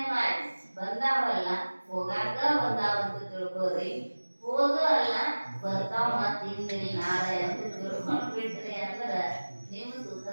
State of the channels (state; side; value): inverted; both; correlation -1.00